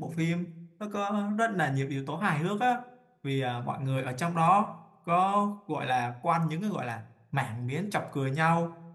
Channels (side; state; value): both; identical; correlation 1.00